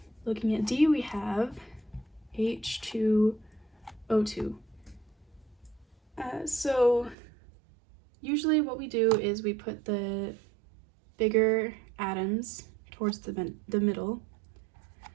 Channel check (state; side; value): drops out; left; at 7.2 s